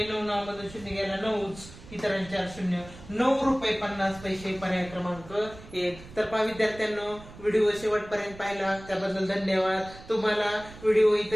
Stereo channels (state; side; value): noise; right; rumble, 17 dB below the sound